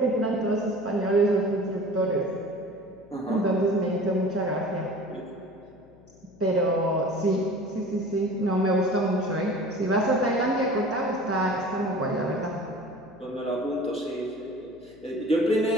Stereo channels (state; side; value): noise; left; hum, 26 dB below the sound